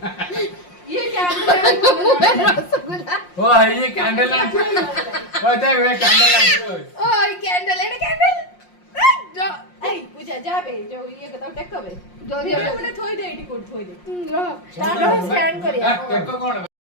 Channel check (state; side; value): late; right; 5.6 ms